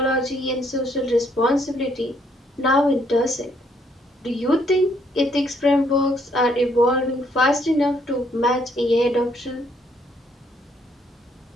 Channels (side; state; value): both; normal; correlation 0.69